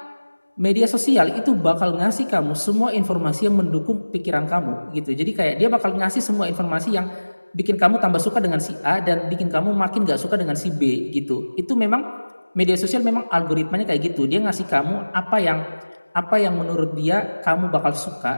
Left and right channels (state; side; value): inverted; both; correlation -1.00